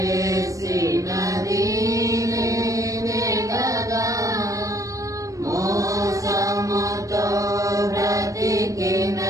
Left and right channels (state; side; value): late; left; 0.16 ms